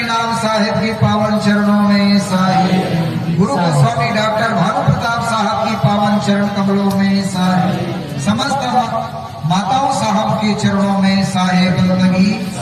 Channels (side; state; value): both; identical; correlation 1.00